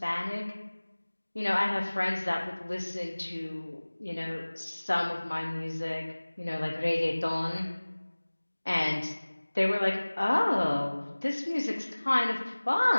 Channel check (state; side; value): inverted; both; correlation -1.00